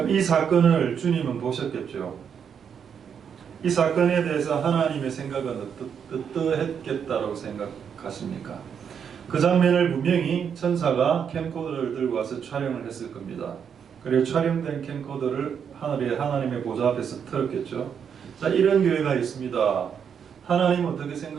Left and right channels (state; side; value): quieter; left; 7.5 dB